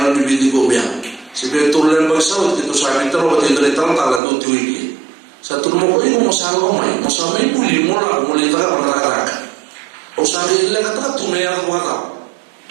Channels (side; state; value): left; drops out; at 4.2 s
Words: di pinggir gobiang. Sebab itu lain bersawat itu saya minta lo waktu itu datang talan tu tuiki. Satu rumah kau ini mau samai buli mula tak ada. Usahai lagi tak tu mea tu kata.